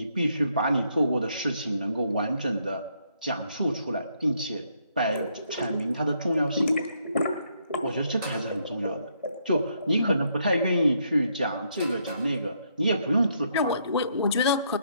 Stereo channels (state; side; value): inverted; both; correlation -0.73